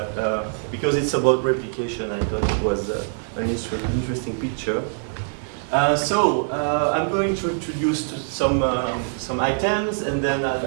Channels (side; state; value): left; silent; 63 dB below the other